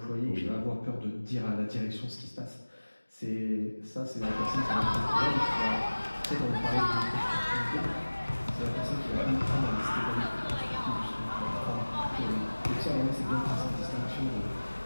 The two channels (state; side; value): inverted; both; correlation -1.00